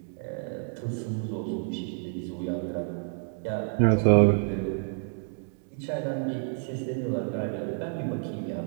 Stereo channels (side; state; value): left; silent; 58 dB below the other